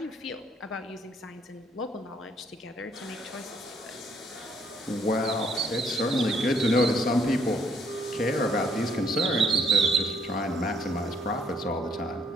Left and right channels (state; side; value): normal; both; correlation 0.67